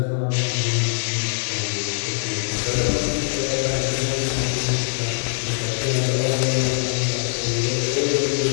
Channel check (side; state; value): right; silent; digital silence